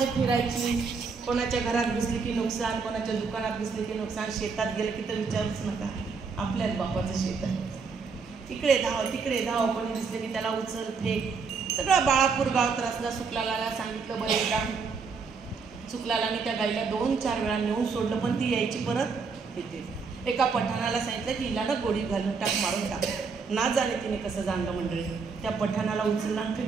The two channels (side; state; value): left; quieter; 5.1 dB